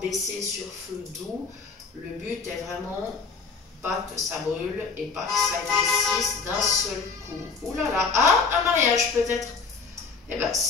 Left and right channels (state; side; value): quieter; right; 4.9 dB